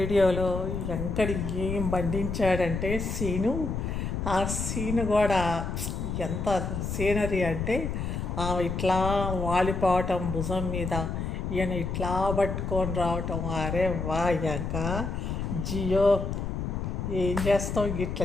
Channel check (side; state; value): left; noise; rumble, 3 dB below the sound